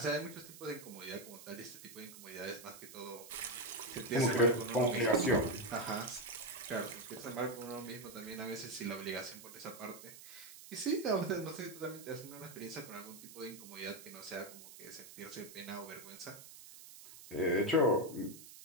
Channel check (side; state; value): right; noise; hiss, 16 dB below the sound